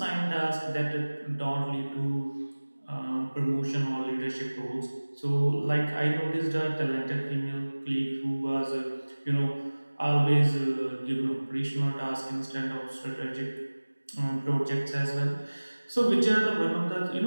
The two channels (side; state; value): both; inverted; correlation -1.00